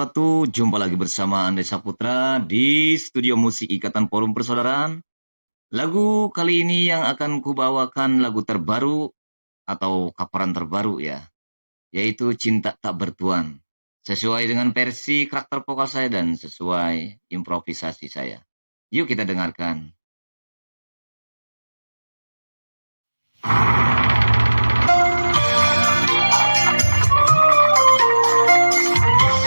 Jumpa lagi bersama Andai Saputra di Studio Musik Ikatan Forum Persaudaraan. Lagu kali ini yang akan kubawakan lagu terbaru atau kaparan terbaru ya, yaitu Cinta Tak Bertuan. Sesuai dengan versi karakter vokal saya dan sesuai improvisasi saya. Yuk kita dengarkan.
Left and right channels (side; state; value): both; inverted; correlation -1.00